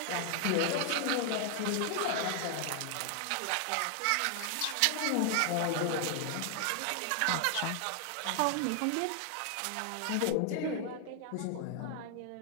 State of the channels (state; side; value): different; both; correlation 0.00